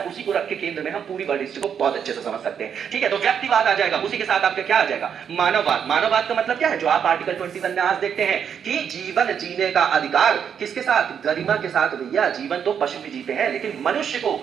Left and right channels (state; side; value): quieter; left; 7.8 dB